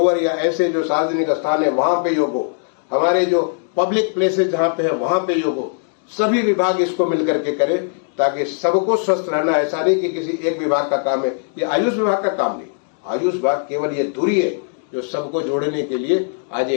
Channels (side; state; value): right; silent; digital silence